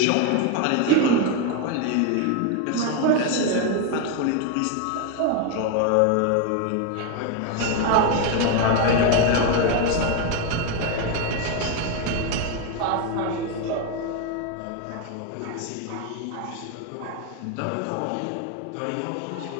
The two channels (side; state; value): both; different; correlation 0.01